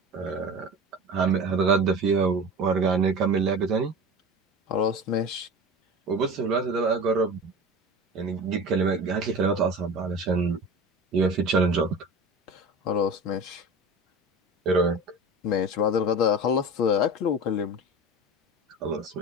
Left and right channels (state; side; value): normal; both; correlation 0.33